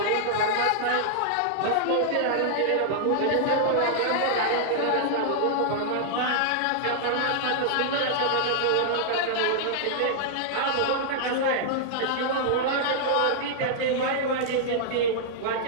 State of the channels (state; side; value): different; both; correlation -0.01